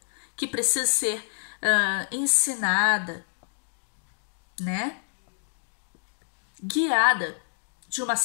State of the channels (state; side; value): silent; right; digital silence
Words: que precisa ser ensinada, né? Guiada de uma